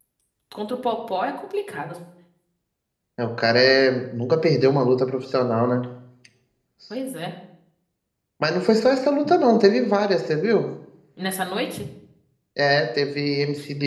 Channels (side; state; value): both; identical; correlation 1.00